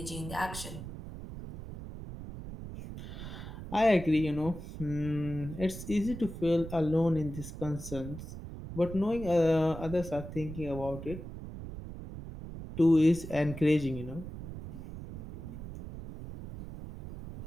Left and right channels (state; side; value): noise; right; rumble, 10 dB below the sound